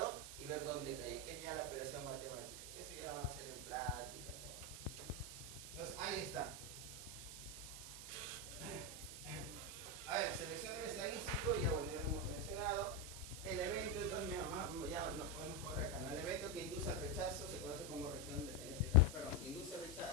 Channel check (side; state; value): right; noise; hiss, 9 dB below the sound